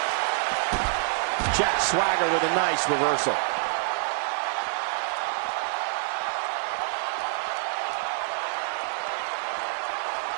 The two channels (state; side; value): silent; left; digital silence